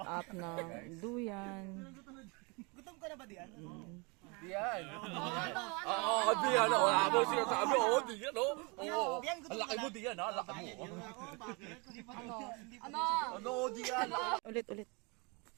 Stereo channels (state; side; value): quieter; left; 30.1 dB